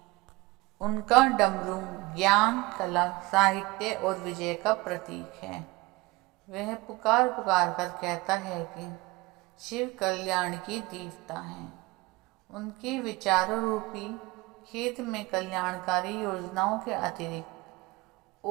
उनका डमरू ज्ञान, कला, साहित्य और विजय का प्रतीक है। वह पुकार पुकार कर कहता है कि शिव कल्याण की देवता हैं। उनके विचारों रूपी खेत में कल्याणकारी योजनाओं के अतिरिक्त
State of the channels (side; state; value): left; quieter; 22.2 dB